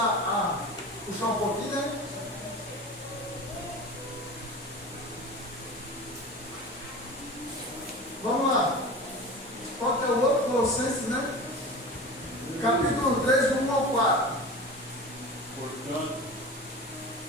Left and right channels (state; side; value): normal; both; correlation 0.33